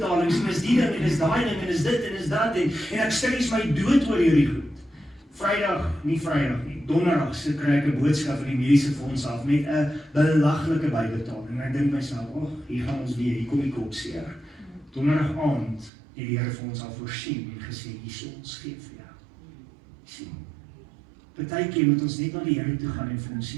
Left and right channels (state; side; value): drops out; left; at 15.9 s